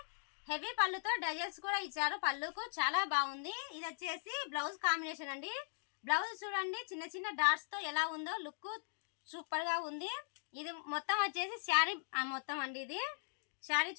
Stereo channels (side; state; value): right; silent; digital silence